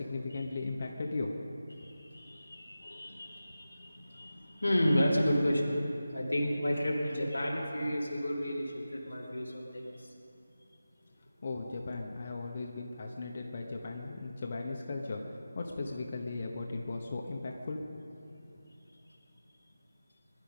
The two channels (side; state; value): both; inverted; correlation -0.93